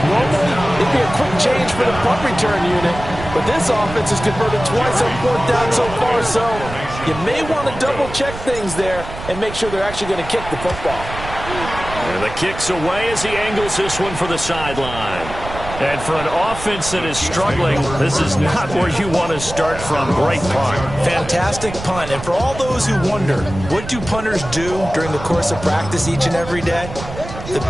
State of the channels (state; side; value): noise; right; rumble, 11 dB below the sound